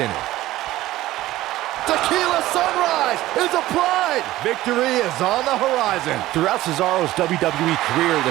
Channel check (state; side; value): quieter; left; 16.0 dB